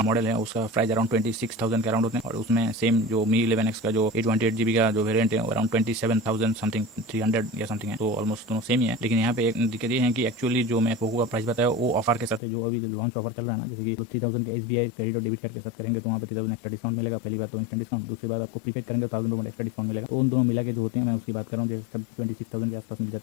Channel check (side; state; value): right; drops out; at 12.4 s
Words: मॉडल है, उसका प्राइस अराउंड 26,000 के अराउंड होते हैं, और उसमें सेम जो Mi 11X का जो 128GB का जो वेरियंट है वो अराउंड 27,000 समथिंग 300 या समथिंग है, तो ऑलमोस्ट दोनों सेम ही है। लेकिन यहाँ पे एक दिक्कत ये है कि एक्चुअली जो मैं पोको का प्राइस बताया वो ऑफर के साथ है, जो अभी लॉन्च ऑफर चल रहा है ना, जैसे कि 3000 के SBI क्रेडिट और डेबिट कार्ड के साथ करेंगे तो वहाँ पे 3000 एक्स्ट्रा डिस्काउंट मिलेगा। पहली बात तो इंस्टेंट डिस्काउंट, दूसरी बात आपको प्रीपेड करेंगे तो 1000 रुपये एक्स्ट्रा डिस्काउंट मिलेगा। तो उन दोनों मिला के जो होते हैं मैं उसकी बात कर रहा हूँ, जो सब 26,000 के आसपास मिल जाता